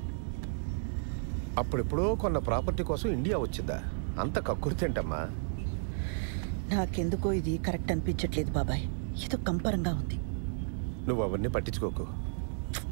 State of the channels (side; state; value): left; silent; digital silence